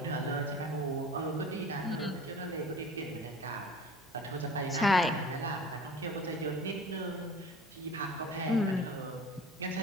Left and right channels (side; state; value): both; normal; correlation 0.42